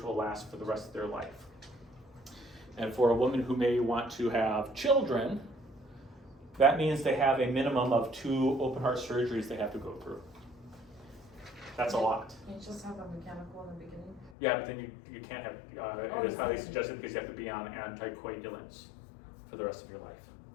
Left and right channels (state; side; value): drops out; right; at 14.4 s